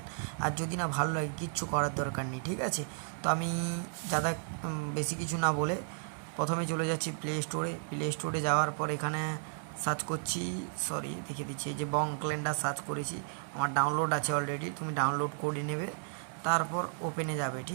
আর যদি না ভালো লাগে কিচ্ছু করার দরকার নেই। ঠিক আছে, তো আমি যারা বেশি কিছু না বলে প্রথমে চলে যাচ্ছি প্লে স্টোরে যাওয়ার পর এখানে সার্চ করছি, দেখিয়ে দিচ্ছি, এই যে বং ক্যালেন্ডার সার্চ করেছি, আমার ডাউনলোড আছে অলরেডি, তুমি ডাউনলোড করে নেবে। তারপর ওপেনে যাবে।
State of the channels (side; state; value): left; silent; digital silence